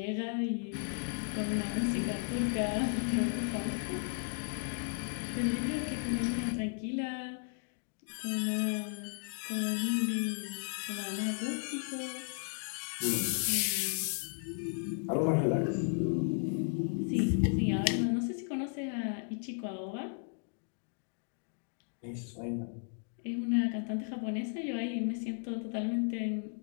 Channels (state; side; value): silent; right; 55 dB below the other